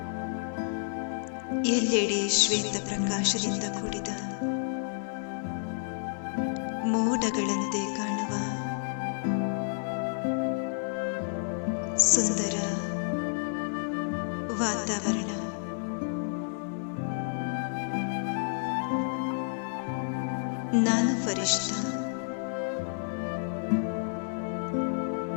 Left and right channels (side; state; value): right; silent; 58 dB below the other